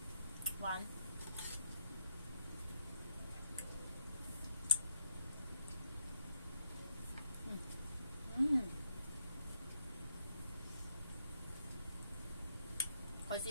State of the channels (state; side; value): inverted; both; correlation -0.75